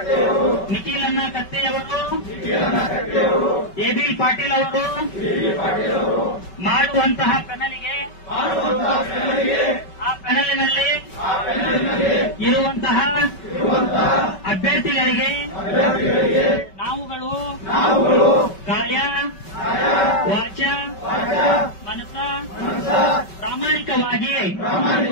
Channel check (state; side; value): late; right; 5.2 ms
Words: ನಿಖಿಲಣ್ಣ ಕತ್ತೆಯವರು, ಎಬಿ ಪಾಟೀಲ್ ಅವರು ಮಾಡುವಂತಹ ಪ್ಯಾನಲ್ಗೆ ಆ ಪ್ಯಾನಲ್ನಲ್ಲಿ ಇರುವಂತಹ ಅಭ್ಯರ್ಥಿಗಳಿಗೆ ನಾವುಗಳು ಕಾಯ ವಾಚ ಮನಸ ಪ್ರಾಮಾಣಿಕವಾಗಿ